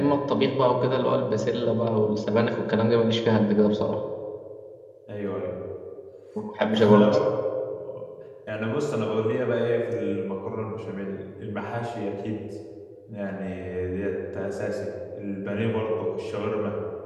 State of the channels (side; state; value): both; identical; correlation 1.00